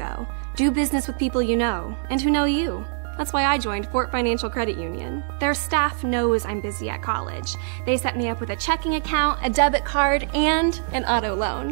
Do business with people you know and who know you. That's why I joined Fort Financial Credit Union. Their staff knows I'm busy at college. They set me up with a checking account, a debit card, and an auto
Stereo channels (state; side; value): silent; left; 63 dB below the other